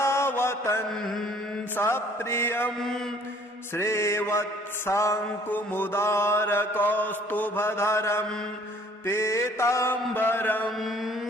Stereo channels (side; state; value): both; normal; correlation 0.56